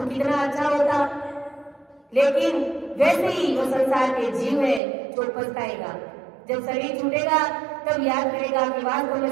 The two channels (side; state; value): left; drops out; at 4.8 s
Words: कितना अच्छा होता। लेकिन वैसे ही वो संसार के जीव है जो पछताएगा। जब शरीर छूटेगा तब याद करेगा कि वास्तव में